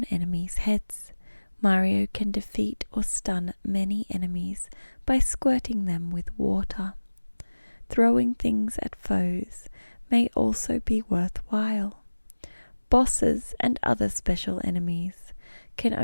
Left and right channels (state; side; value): inverted; both; correlation -1.00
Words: enemies' heads. Mario can defeat or stun many enemies by squirting them with water. Throwing things at foes may also be worthwhile. Bosses and other special enemies can